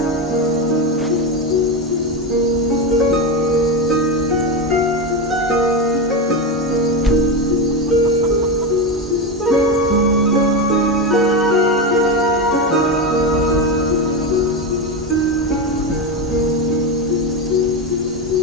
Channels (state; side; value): normal; both; correlation 0.15